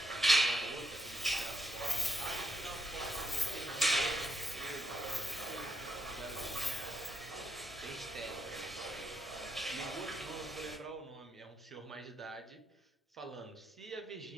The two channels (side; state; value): both; normal; correlation 0.78